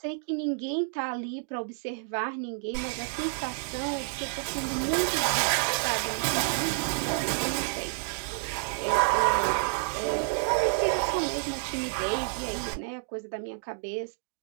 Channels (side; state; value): left; silent; digital silence